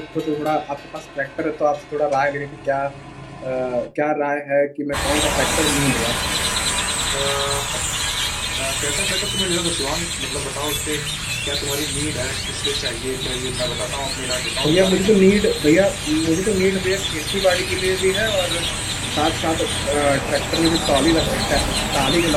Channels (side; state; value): both; identical; correlation 1.00